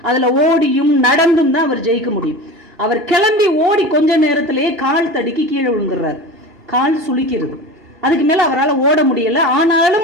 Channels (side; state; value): both; normal; correlation 0.31